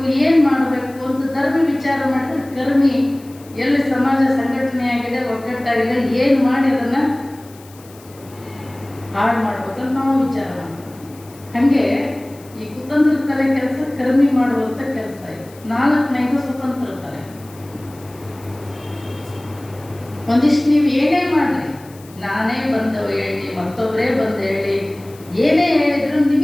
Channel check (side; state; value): left; noise; hiss, 24 dB below the sound